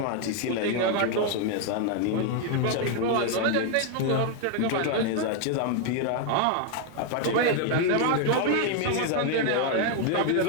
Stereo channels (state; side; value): different; both; correlation 0.01